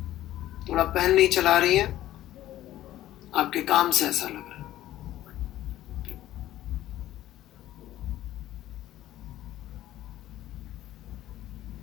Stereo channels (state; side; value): quieter; right; 14.0 dB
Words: थोड़ा पेन नहीं चला रही है, आपके काम से ऐसा लग रहा है।